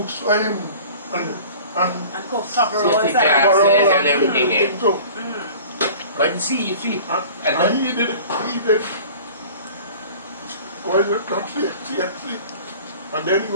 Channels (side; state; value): both; inverted; correlation -0.43